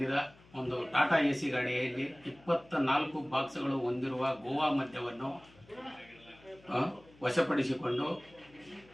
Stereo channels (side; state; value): left; noise; hum, 26 dB below the sound